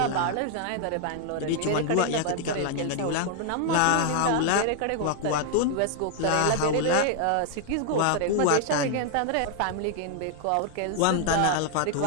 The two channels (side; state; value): both; different; correlation 0.00